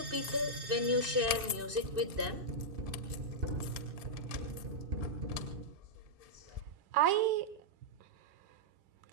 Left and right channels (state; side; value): late; left; 2.6 ms